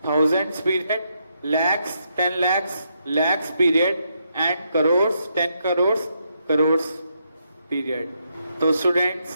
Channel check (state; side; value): inverted; both; correlation -0.78